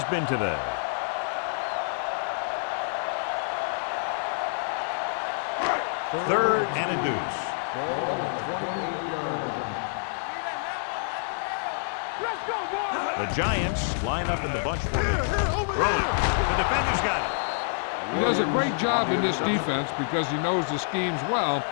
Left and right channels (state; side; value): silent; right; digital silence